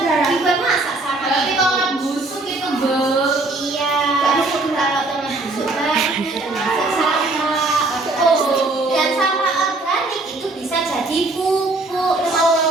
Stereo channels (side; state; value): left; quieter; 3.0 dB